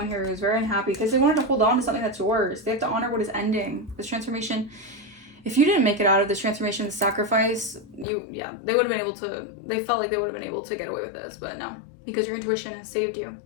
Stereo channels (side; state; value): right; drops out; at 8.1 s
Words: here who's very unhappy because they wanted to hold on to something that's yours. They have to honor what is ending. This transformation. If you didn't make it out of this transformation, the sacrifice, they would have been able to. They felt like they would have been able to get away with this, but no, because your intuition has saved you.